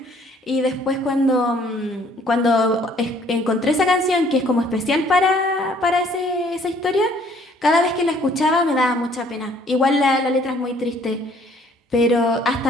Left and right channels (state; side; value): normal; both; correlation 0.60